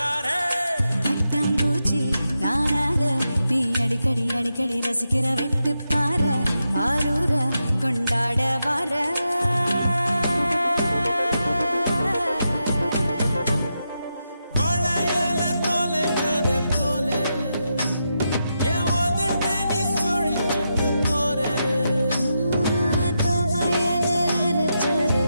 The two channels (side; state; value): both; inverted; correlation -0.86